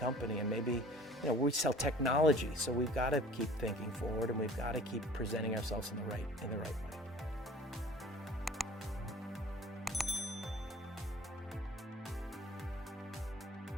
And maybe we sell technology, so we've got to keep thinking forward, and we've got to keep presenting ourselves in the right way.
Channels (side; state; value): both; normal; correlation 0.48